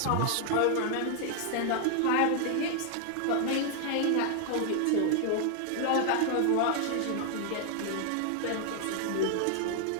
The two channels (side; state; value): both; different; correlation 0.00